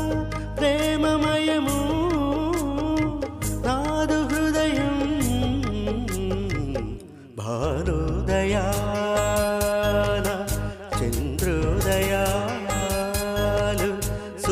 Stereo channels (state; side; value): identical; both; correlation 1.00